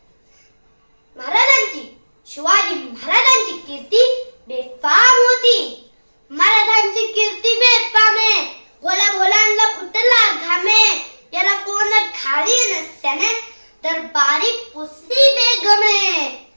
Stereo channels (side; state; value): both; inverted; correlation -1.00